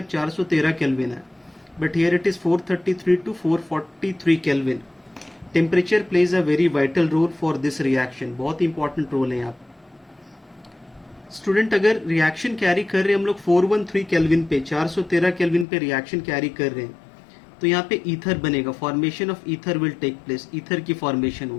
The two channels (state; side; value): drops out; right; at 15.7 s